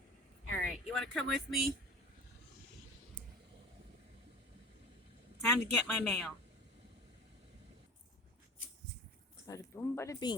All right, you want to come with me? Time to get my mail. Bada boom, bada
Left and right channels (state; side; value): normal; both; correlation 0.39